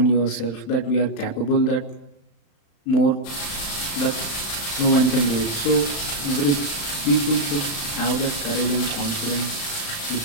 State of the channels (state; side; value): late; right; 35 ms